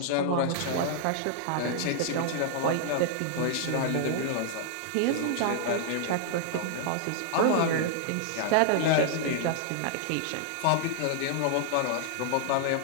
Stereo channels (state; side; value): different; both; correlation -0.01